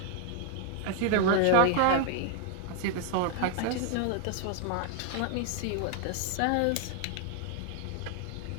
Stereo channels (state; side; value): different; both; correlation 0.00